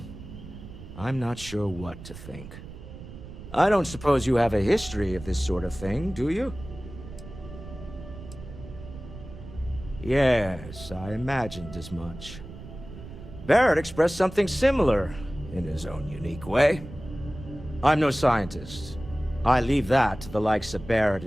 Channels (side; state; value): right; noise; rumble, 14 dB below the sound